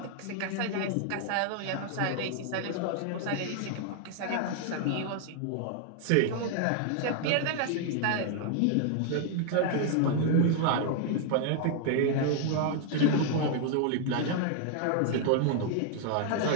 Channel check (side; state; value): both; different; correlation 0.00